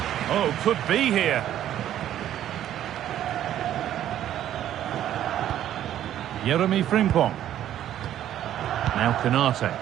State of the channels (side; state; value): left; quieter; 11.6 dB